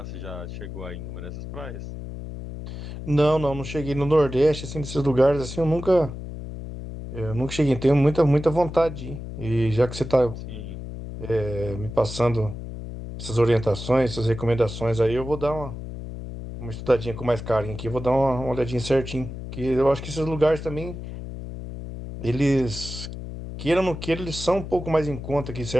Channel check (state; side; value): noise; left; hum, 9 dB below the sound